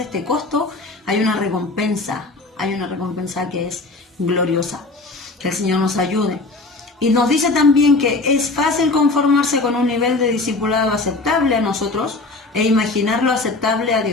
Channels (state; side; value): quieter; right; 3.3 dB